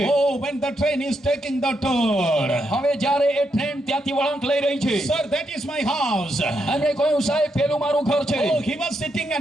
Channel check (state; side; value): normal; both; correlation 0.81